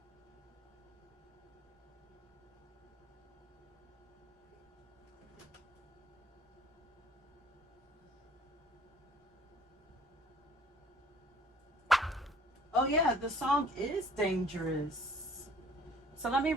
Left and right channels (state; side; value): normal; both; correlation 0.54